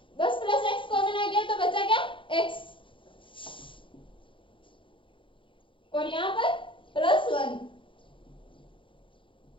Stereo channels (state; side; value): late; right; 0.25 ms